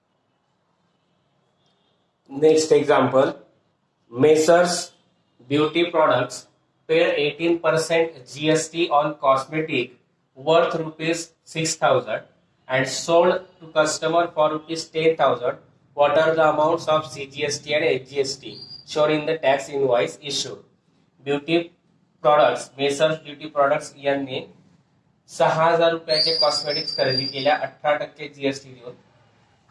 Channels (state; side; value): identical; both; correlation 1.00